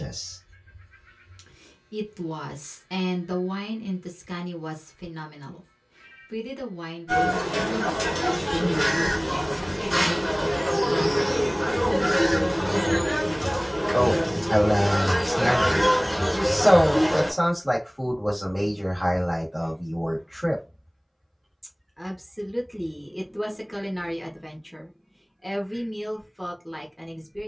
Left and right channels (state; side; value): identical; both; correlation 1.00